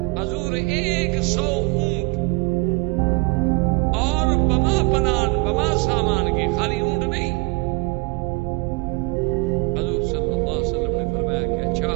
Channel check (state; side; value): quieter; left; 27.1 dB